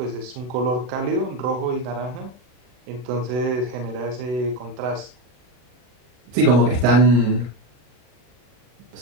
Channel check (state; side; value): late; left; 40 ms